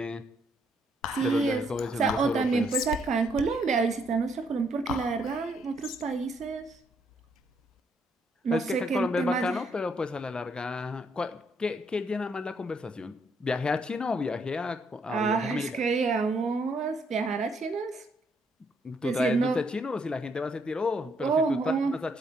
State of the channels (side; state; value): both; normal; correlation 0.71